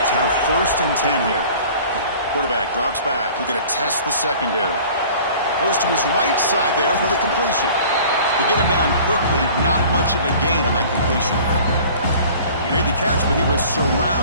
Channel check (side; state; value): both; inverted; correlation -0.47